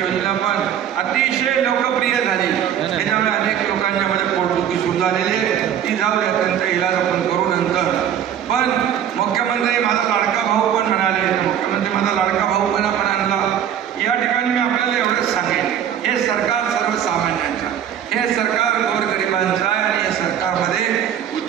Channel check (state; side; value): quieter; left; 9.6 dB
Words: योजना पण अतिशय लोकप्रिय झाली, त्याच्यामुळे अनेक लोकांच्या मध्ये पोटदुखी सुरू झालेली आहे, ती जाऊ द्या, त्यांचा इलाज आपण करू नंतर। पण मुख्यमंत्री माझा लाडका भाऊ पण म्हणाले, मुख्यमंत्री माझा लाडका भाऊ पण आपण आणला। या ठिकाणी मी आपल्याला एवढंच सांगेन, हे सरकार सर्वसामान्यांचं, हे सरकार गोरगरिबांचं आहे आणि या सरकारमध्ये